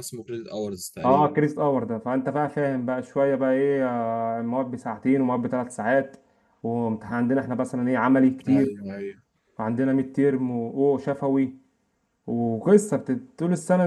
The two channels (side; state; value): both; identical; correlation 1.00